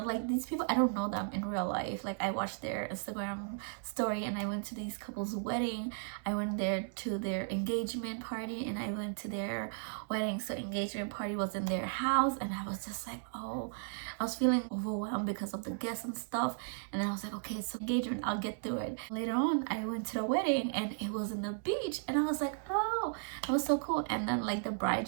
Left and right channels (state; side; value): silent; left; digital silence